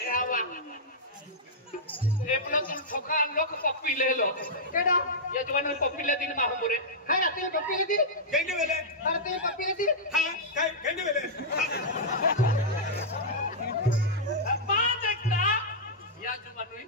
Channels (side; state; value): both; normal; correlation -0.10